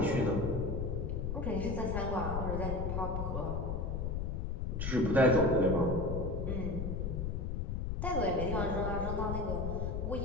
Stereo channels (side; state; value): left; noise; rumble, 1 dB below the sound